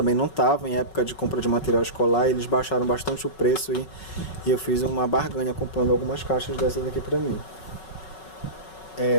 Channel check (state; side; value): late; right; 5.4 ms